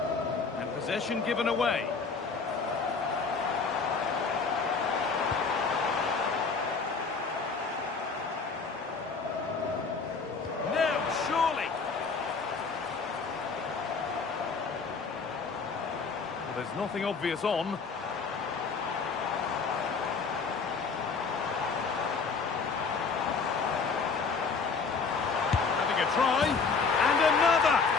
And possession given away. There's nothing obvious on.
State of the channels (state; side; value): quieter; right; 4.9 dB